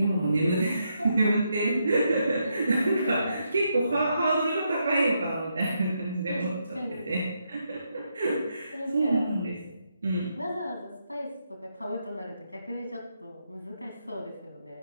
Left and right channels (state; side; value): inverted; both; correlation -0.80